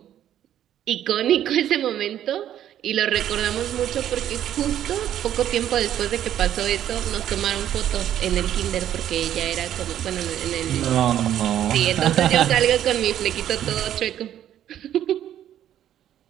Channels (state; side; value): quieter; left; 11.1 dB